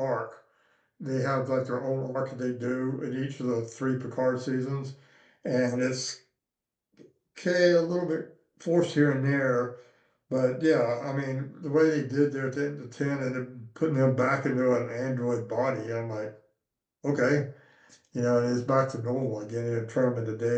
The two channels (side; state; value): both; identical; correlation 1.00